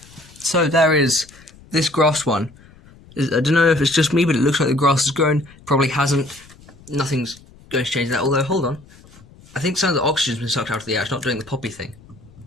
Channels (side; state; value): left; noise; rumble, 24 dB below the sound